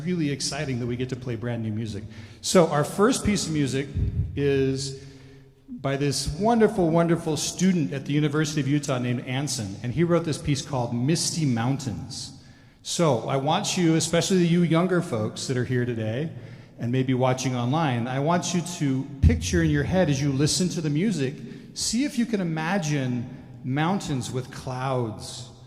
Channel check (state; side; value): identical; both; correlation 1.00